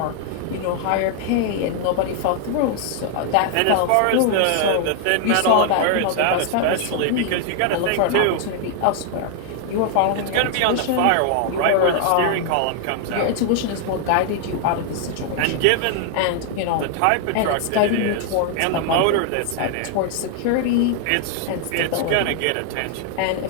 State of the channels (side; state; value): both; different; correlation 0.00